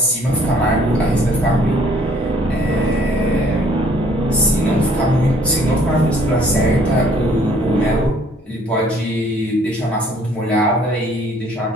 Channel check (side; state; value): both; normal; correlation 0.60